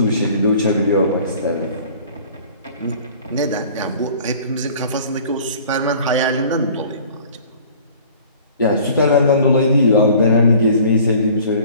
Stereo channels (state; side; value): inverted; both; correlation -0.49